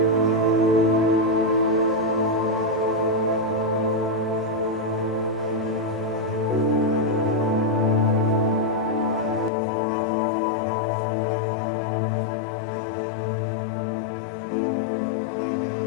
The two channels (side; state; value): right; drops out; at 9.5 s